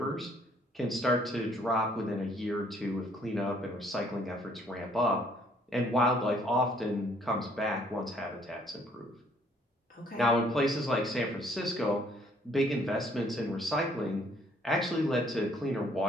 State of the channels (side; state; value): both; normal; correlation 0.63